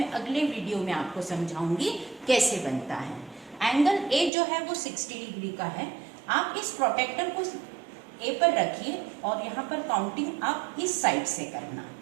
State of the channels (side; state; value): left; drops out; at 4.3 s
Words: अगले वीडियो में आपको समझाऊंगी कैसे बनता है। एंगल ए जो है वो 60 डिग्री का है। आप इस प्रोटेक्टर को ए पर रखिए और यहाँ पर काउंटिंग आप इस साइड से करना,